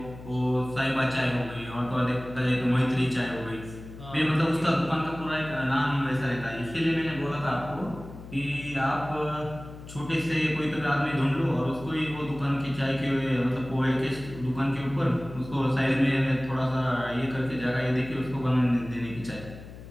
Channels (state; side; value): noise; left; hum, 15 dB below the sound